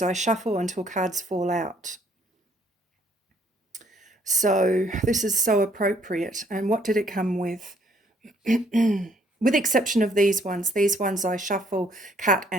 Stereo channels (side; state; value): both; normal; correlation 0.65